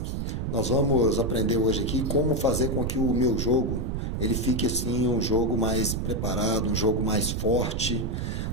Nós vamos aprender hoje aqui como fazer com que o meu jogo ele fique assim um jogo mais preparado, um jogo mais forte,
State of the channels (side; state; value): right; noise; rumble, 1 dB below the sound